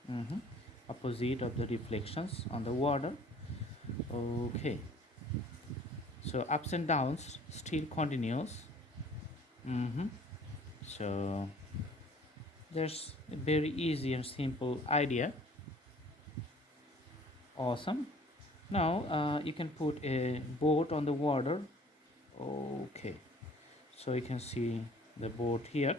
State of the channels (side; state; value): both; normal; correlation 0.52